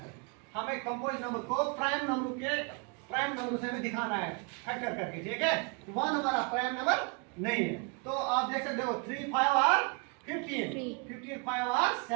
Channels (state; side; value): quieter; left; 34.3 dB